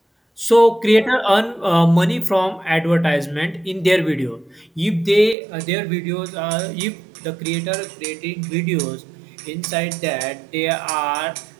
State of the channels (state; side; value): drops out; left; at 5.4 s